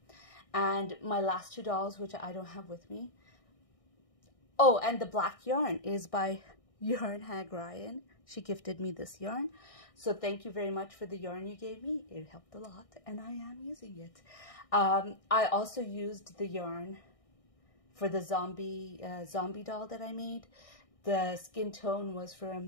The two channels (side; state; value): right; late; 1.6 ms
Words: And my last two dolls, which I don't have with me. Oh, and the black yarn is by Yarn Hag Ryan. She gifted me this yarn. So thank you very much for the yarn you gave me. It helped a lot, and I am using it. I also used the yarn for the zombie doll that I made. The skin tone was